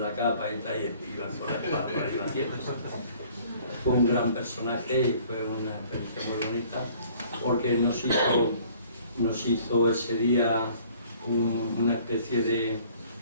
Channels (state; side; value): inverted; both; correlation -0.55